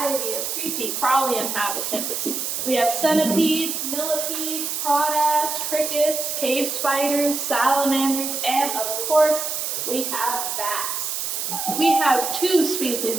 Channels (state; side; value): noise; right; hiss, 3 dB below the sound